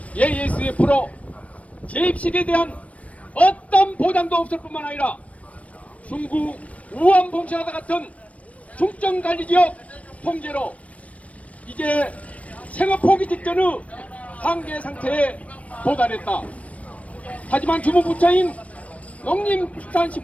ASF로 재입식에 대한 어떤 보장도 없을 뿐만 아니라 중구 우한 봉쇄하다 같은 중점관리지역 통제로 이제 생업 포기 직전의 한계 상태에 도달했다. 하지만 주무부처인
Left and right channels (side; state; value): right; late; 0.066 ms